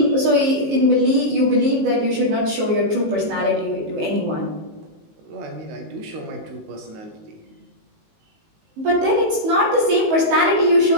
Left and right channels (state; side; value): late; left; 19 ms